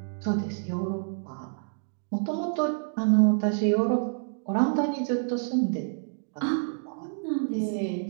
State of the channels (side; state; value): left; silent; digital silence